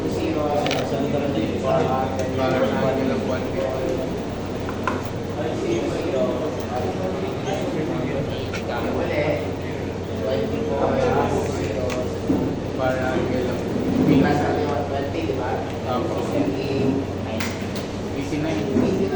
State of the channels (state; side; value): identical; both; correlation 1.00